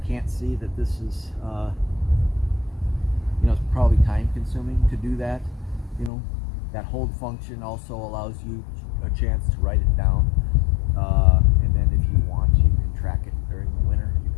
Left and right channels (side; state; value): right; drops out; at 6.1 s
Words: can't see that this is, you know, it's probably time consuming to do that. You know, that hold function also allows you a chance to write it down. And then if you want, you can track it during the winter. You